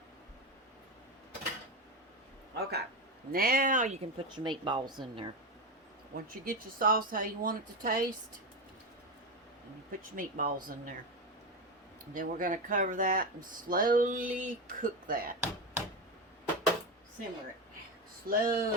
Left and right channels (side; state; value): both; normal; correlation 0.16